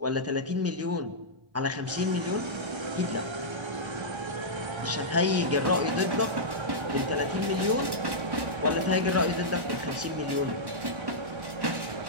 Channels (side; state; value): left; late; 1.1 ms